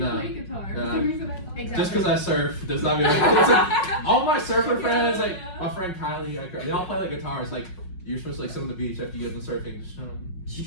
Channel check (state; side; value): late; right; 5.5 ms